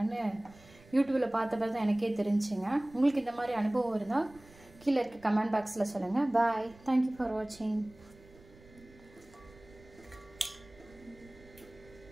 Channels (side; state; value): right; noise; rumble, 24 dB below the sound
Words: யூடியூப்பில் பார்த்த பிறகு தான் எனக்கே தெரிஞ்சுங்க. உங்களுக்கு இந்த மாதிரி அனுபவம் இருந்தால் கீழே இருக்க கமெண்ட் பாக்ஸில் சொல்லுங்கள். பாய். தேங்க்யூ ஃபார் வாட்சிங்.